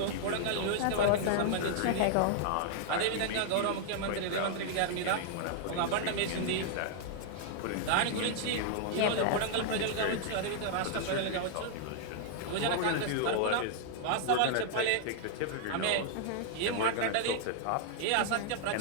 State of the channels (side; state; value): both; different; correlation -0.01